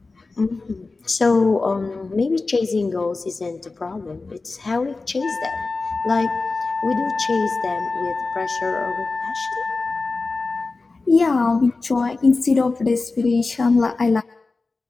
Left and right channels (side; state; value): right; quieter; 3.7 dB